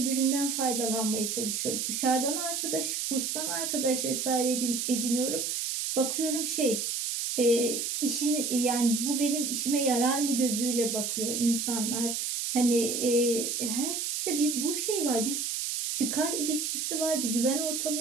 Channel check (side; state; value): right; noise; hiss, 1 dB below the sound